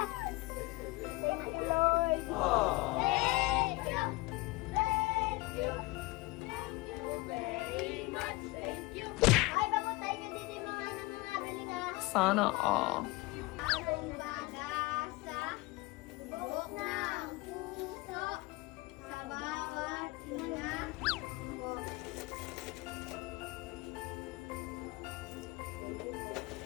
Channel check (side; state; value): right; quieter; 21.8 dB